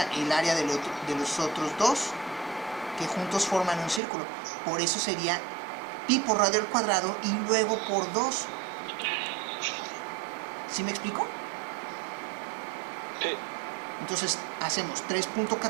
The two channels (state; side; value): drops out; left; at 4.0 s